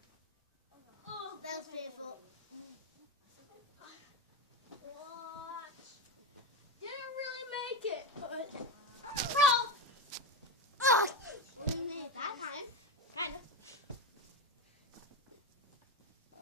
Oh, that was painful. What? Didn't really make it, but... Bro! Ugh! We made it that time. Kind of.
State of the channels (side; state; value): both; normal; correlation 0.16